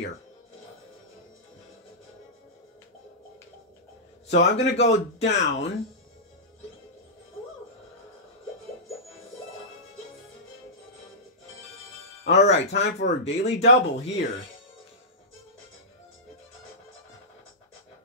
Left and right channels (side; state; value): both; normal; correlation -0.14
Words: So I'm going to go down. Alright, time for a daily double here.